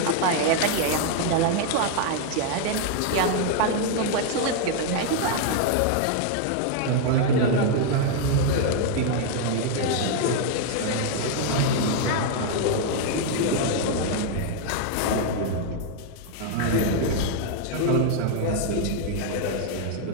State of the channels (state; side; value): different; both; correlation 0.00